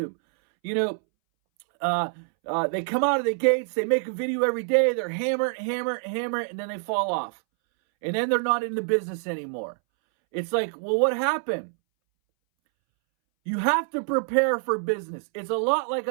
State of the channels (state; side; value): silent; left; 61 dB below the other